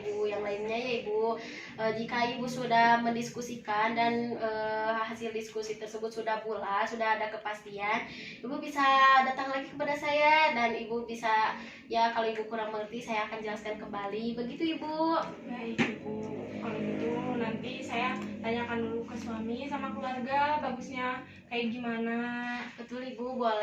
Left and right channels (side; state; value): both; identical; correlation 1.00